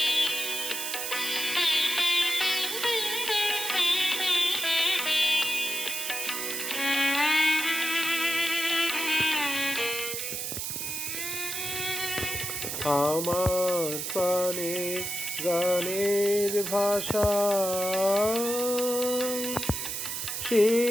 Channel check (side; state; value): right; noise; hiss, 3 dB below the sound